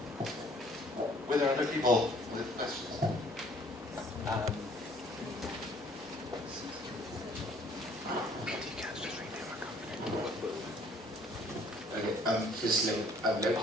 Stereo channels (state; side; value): normal; both; correlation 0.58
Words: Were there other people with questions? Firstly, I would like to